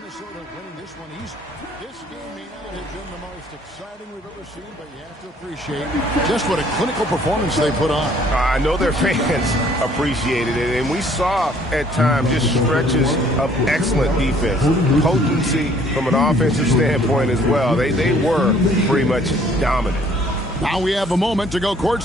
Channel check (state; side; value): normal; both; correlation 0.59